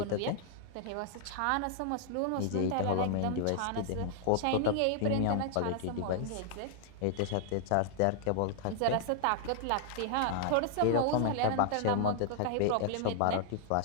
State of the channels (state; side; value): different; both; correlation 0.00